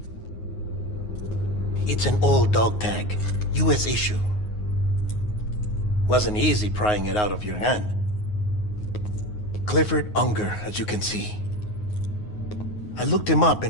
It's an old dog tag, US issue. Wasn't easy prying it out of your hand. Clifford Unger, as you can see. I looked him up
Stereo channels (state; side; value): late; right; 9.5 ms